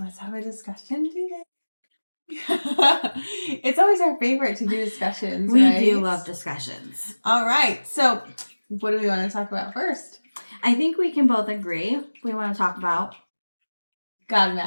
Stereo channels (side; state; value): both; inverted; correlation -1.00